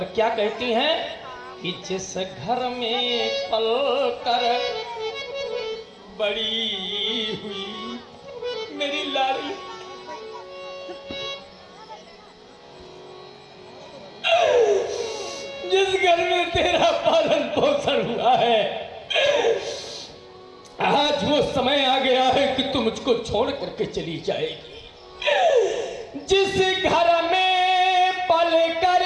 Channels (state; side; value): identical; both; correlation 1.00